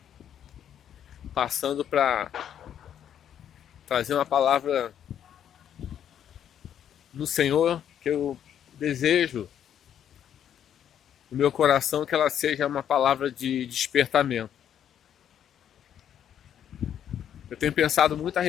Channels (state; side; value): quieter; right; 9.6 dB